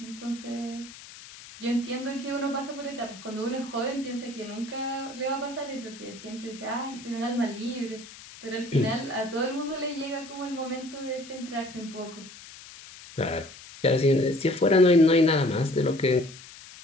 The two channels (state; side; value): noise; left; hiss, 17 dB below the sound